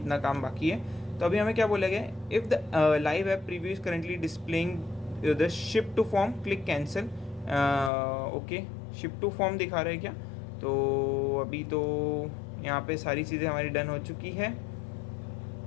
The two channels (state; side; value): drops out; right; at 7.9 s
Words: काम बाकी है। तो अभी हमें क्या बोला गया, if the live app preview is currently displaying the ship to form, click cancel. Okay, ship to form दिखा रहा है क्या, तो अभी तो यहाँ पे सारी चीज़ें हमारी डन हो चुकी है।